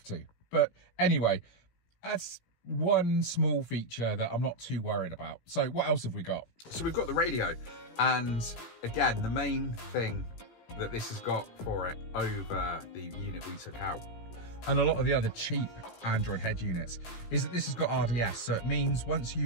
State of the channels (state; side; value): late; right; 17 ms